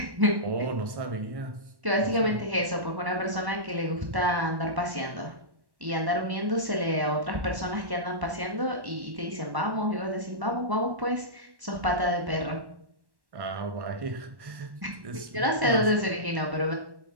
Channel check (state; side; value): late; left; 1.1 ms